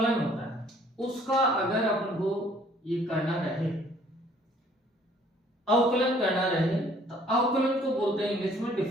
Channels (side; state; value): both; normal; correlation 0.59